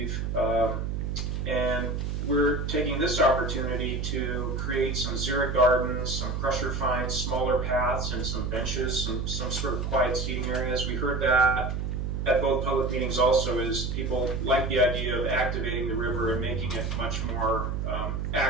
and we're taking this opportunity to create some xeric gardens, some crusher finds, smaller paths, and some benches, some sort of quiet seating areas. We heard that at both public meetings also, is people like the idea of activating the river and making it much more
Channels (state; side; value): noise; right; hum, 2 dB below the sound